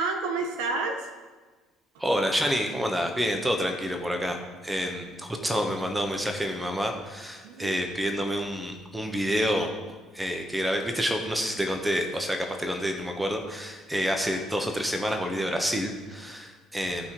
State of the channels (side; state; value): both; normal; correlation 0.80